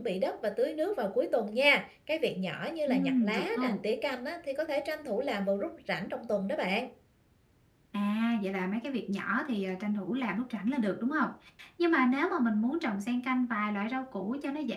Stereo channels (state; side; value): identical; both; correlation 1.00